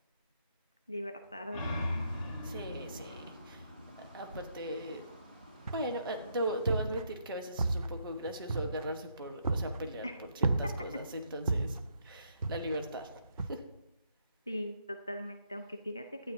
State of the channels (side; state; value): both; inverted; correlation -0.74